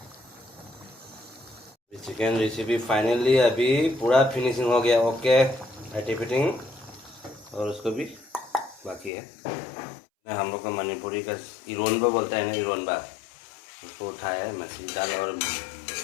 चिकन रेसिपी फाइनली अभी पूरा फिनिशिंग हो गया। ओके एटी फिटिंग, और उसको भी बाकी है। हम लोग का मणिपुरी का इरोनबा बोलता है ना, इरोनबा, उसको उठाया है मछली दाल और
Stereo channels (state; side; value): drops out; right; at 9.1 s